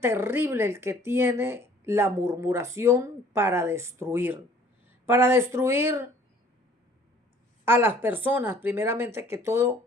el que tiene la murmuración para destruir a las personas, primeramente que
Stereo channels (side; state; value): both; normal; correlation 0.54